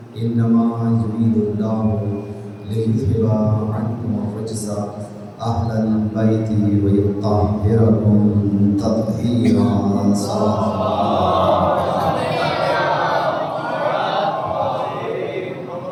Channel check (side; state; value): both; identical; correlation 1.00